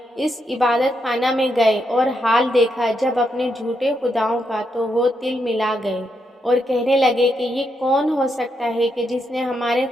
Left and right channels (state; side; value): normal; both; correlation 0.81